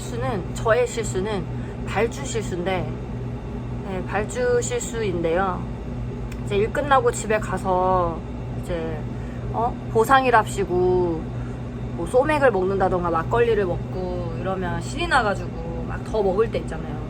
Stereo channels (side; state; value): both; identical; correlation 1.00